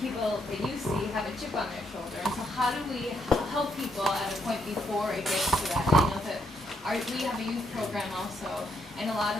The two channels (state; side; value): normal; both; correlation 0.76